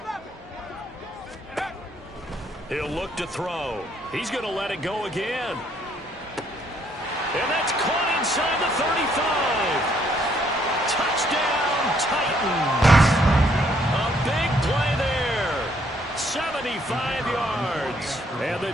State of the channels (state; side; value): normal; both; correlation 0.68